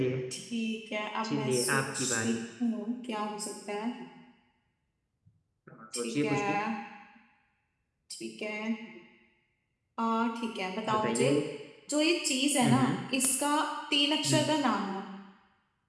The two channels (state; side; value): identical; both; correlation 1.00